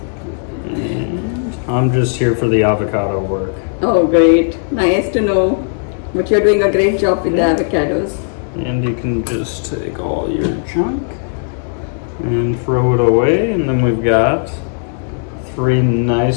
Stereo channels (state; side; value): silent; right; digital silence